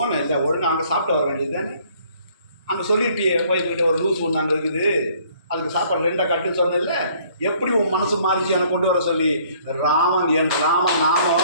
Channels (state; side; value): inverted; both; correlation -0.60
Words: இல்லை ஒழுங்கு அங்கே சாப்பிட்டு வர வேண்டியது தானே, அங்கே சொல்லிட்டியே போய்கிட்ட ஒரு லூஸ் ஒன்று அங்கே இருக்குது, அதுக்கு சாப்பாடு 2 கட்டுன்னு சொன்னதில்ல, எப்படி உன் மனசு மாறிச்சு என்னை கொண்டு வர சொல்லி. ராமன் என் ராமன்